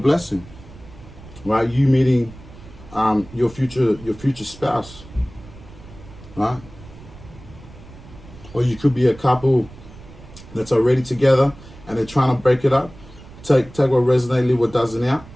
right? You meeting your future spouse, right? Or you could be a couple that's already together and they're trying to break it up. Take what resonates, leave what doesn't out,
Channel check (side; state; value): right; noise; rumble, 19 dB below the sound